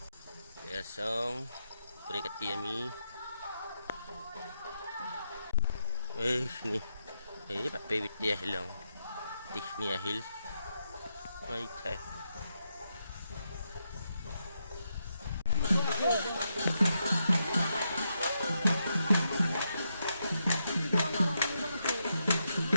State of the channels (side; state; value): both; inverted; correlation -0.83